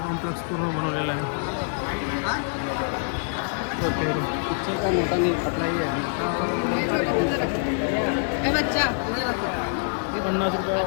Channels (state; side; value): silent; right; digital silence